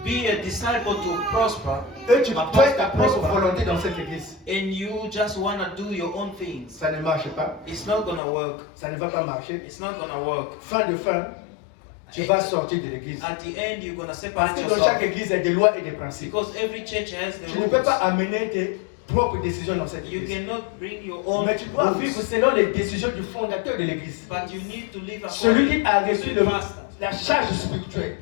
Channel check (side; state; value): right; drops out; at 8.2 s